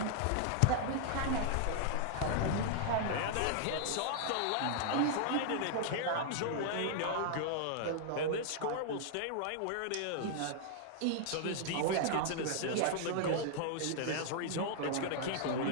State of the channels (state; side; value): different; both; correlation -0.01